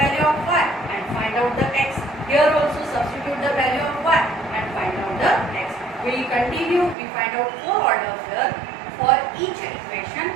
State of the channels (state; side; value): drops out; left; at 7.0 s